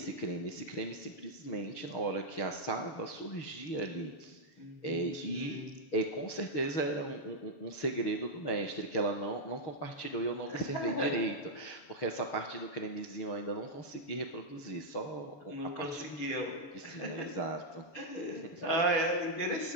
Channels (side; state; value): right; late; 6.9 ms